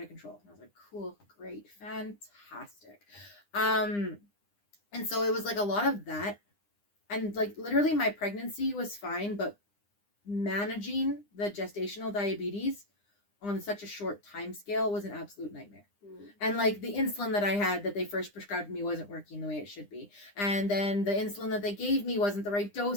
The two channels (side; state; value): right; late; 9.9 ms